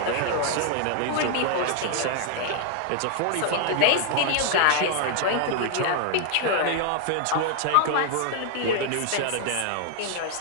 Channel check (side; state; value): both; different; correlation 0.00